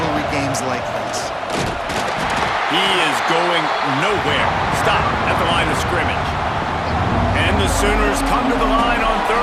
games like this. He is going nowhere. Stop at the line of scrimmage. And the Sooners come to the line on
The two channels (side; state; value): both; identical; correlation 1.00